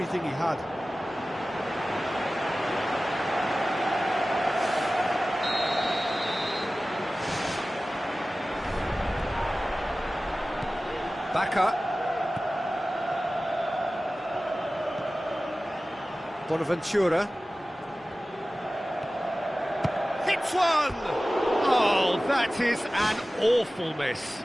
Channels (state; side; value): normal; both; correlation 0.96